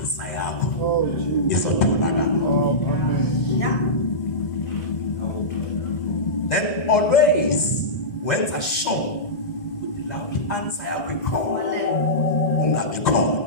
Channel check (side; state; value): right; late; 1.5 ms